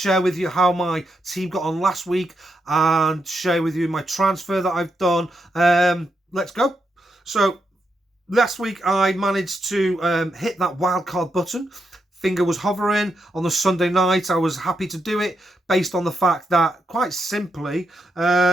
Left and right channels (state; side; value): normal; both; correlation 0.82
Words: with you how my team got on last week and share with you my transfer that I've done. Let's go. So last week I managed to hit that wildcard button. Finger was hovering on the Sunday night. I was happy to do it based on the fact that, quite simply,